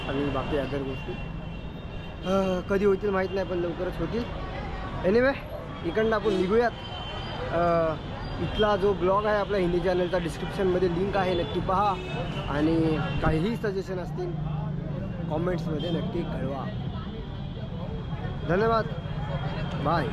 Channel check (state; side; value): identical; both; correlation 1.00